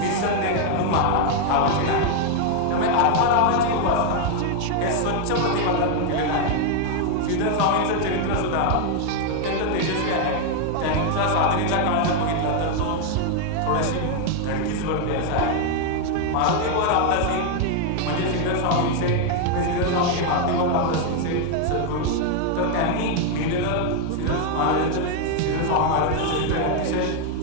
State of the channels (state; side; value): different; both; correlation 0.00